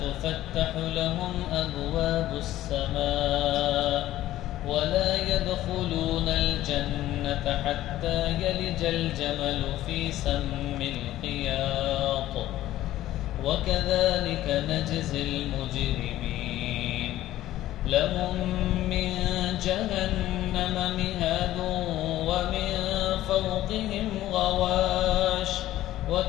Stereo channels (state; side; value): quieter; right; 14.4 dB